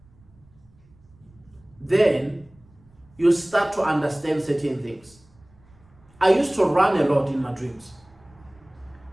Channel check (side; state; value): right; noise; rumble, 29 dB below the sound